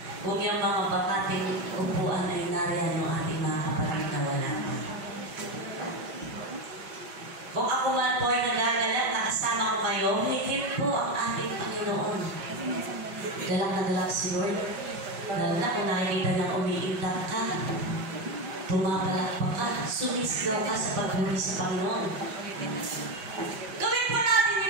kung yung mga bakating upuan ay nariyan ng ating mga kapatid na wala. Kung ako man po ay nagagalak na kasama ko kayo, higit po ang ating Panginoon. Galak na galak si Lord. Lalo na kung nakikita niyang umiindak ka, pumapalakpak ka, sumisigaw ka sa pagbuli sa Panginoon. Gawin po natin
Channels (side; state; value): left; late; 6.1 ms